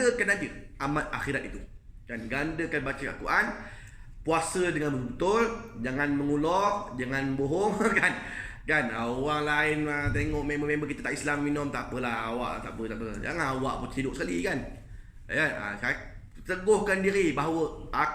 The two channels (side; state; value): both; identical; correlation 1.00